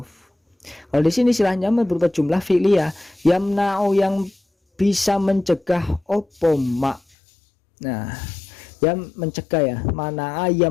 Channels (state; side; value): drops out; right; at 7.0 s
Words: Kalau di sini silahnya mah berupa jumlah fi'liyah, yamna'u yang bisa mencegah opo ma. Nah, yang mencegah ya, mana